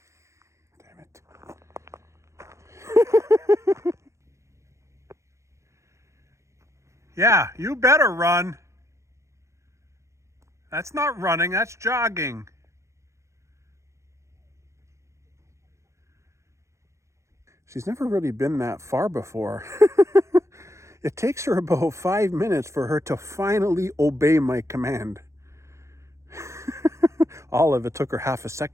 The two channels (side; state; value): left; late; 0.14 ms